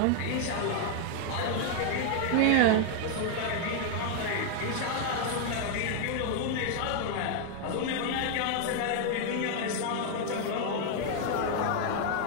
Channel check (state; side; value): different; both; correlation 0.00